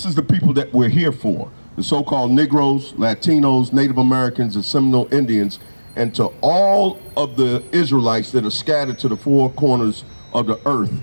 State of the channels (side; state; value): both; inverted; correlation -1.00